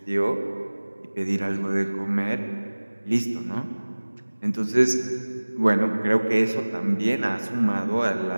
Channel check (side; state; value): both; inverted; correlation -1.00